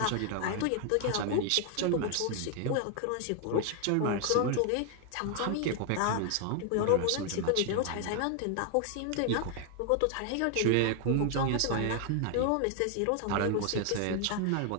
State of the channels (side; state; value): both; different; correlation 0.00